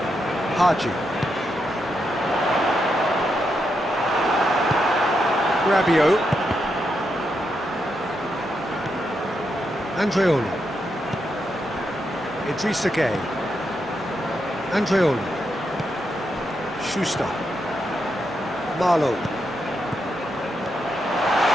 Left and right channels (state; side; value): noise; left; hum, 28 dB below the sound